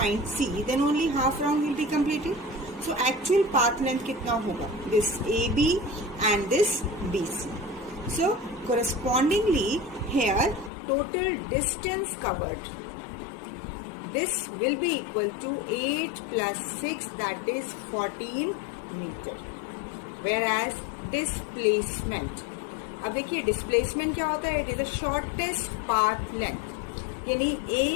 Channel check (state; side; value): drops out; right; at 10.7 s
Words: C, then only half round will be completed. So actual path length कितना होगा? This AB and this BC. So correspondingly here total distance covered, this will be equal to 8 plus 6, that is 14 meter. Whereas displacement, अब देखिए डिस्प्लेसमेंट क्या होता है? It is the shortest path length, यानी